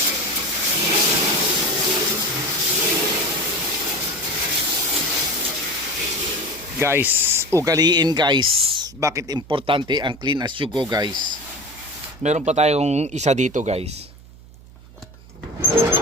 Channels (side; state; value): right; noise; hum, 21 dB below the sound